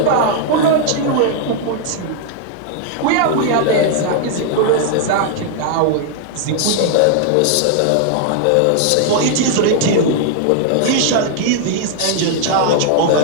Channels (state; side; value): different; both; correlation 0.00